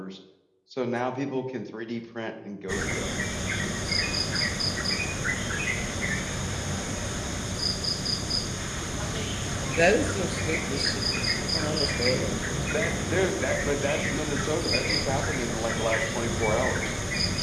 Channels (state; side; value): identical; both; correlation 1.00